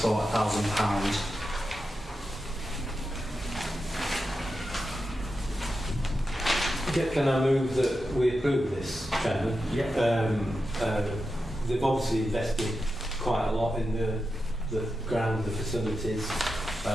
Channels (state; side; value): normal; both; correlation 0.89